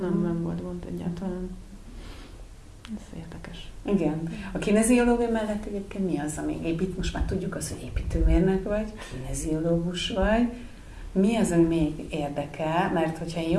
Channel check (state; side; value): identical; both; correlation 1.00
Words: Nem volt gond egyáltalán. Ez érdekes. Igen. A kineziológia mellett egyébként mi az, ami most már tudjuk azt, hogy építőmérnök vagy, kineziológus vagy. Mi az, ami még érdekel? Mert hogyha én